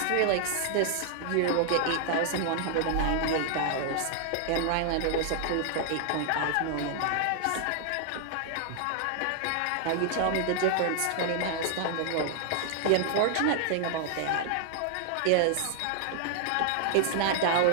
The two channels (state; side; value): different; both; correlation 0.00